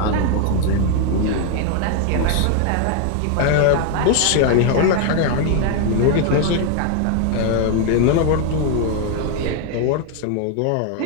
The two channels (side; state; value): both; different; correlation 0.00